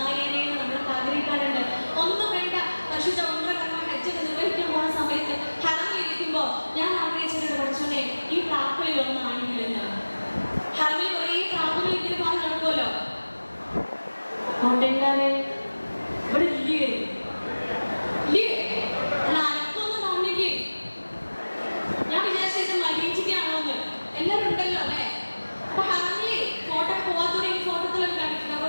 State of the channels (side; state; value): both; inverted; correlation -1.00